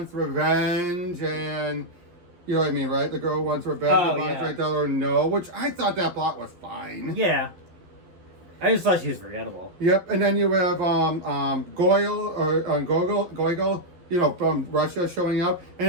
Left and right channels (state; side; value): late; left; 11 ms